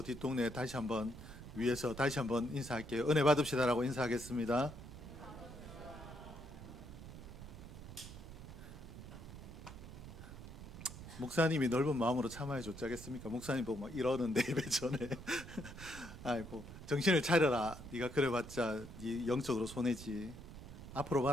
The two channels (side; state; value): right; noise; rumble, 13 dB below the sound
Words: 뒷동네 다시 한번 위에서 다시 한번 인사할게요. 은혜 받읍시다라고 인사하겠습니다. 목사님이 넓은 마음으로 참아야 줬자겠습니까? 목사님 보고 막 이러는데 예배 전에 아이고 정신을 차려라. 네가 그래봤자 네 영적으로 손해지. 앞으로